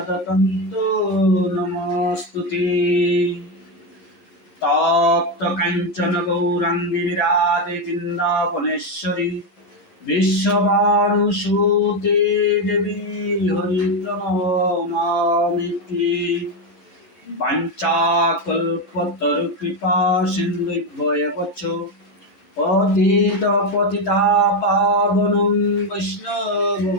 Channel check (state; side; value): late; right; 11 ms